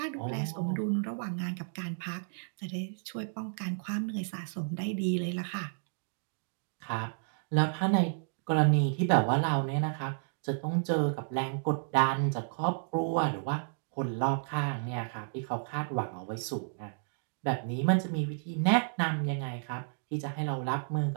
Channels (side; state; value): left; silent; digital silence